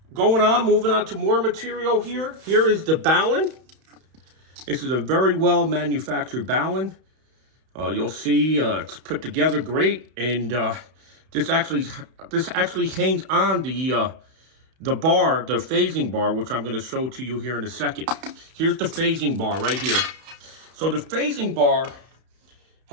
Moving on to more material here. Here is the Balun. This is a very well manufactured Balun. You'll see it's put together great, and this actually hangs on the bar, the phasing bar, which I'm going to show to you here in a second. Here's the phasing bar right here. So the phasing bar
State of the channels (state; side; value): late; left; 31 ms